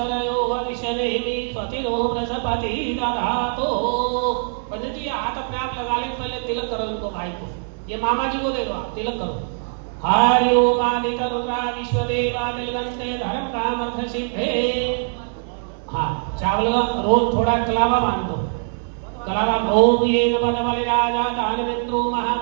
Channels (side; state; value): left; silent; 64 dB below the other